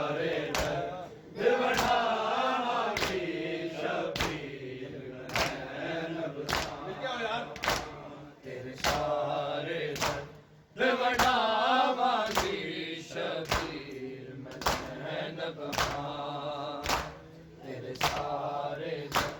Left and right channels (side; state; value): both; identical; correlation 1.00